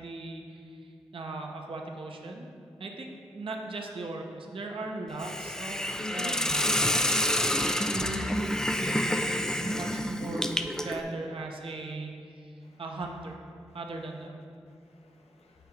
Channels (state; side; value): normal; both; correlation 0.57